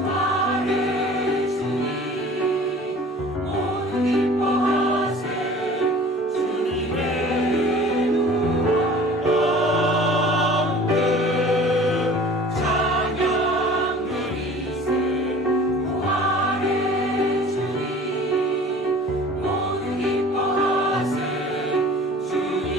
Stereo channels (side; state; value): both; normal; correlation 0.45